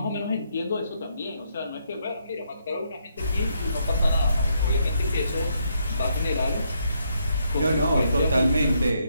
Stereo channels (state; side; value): inverted; both; correlation -0.76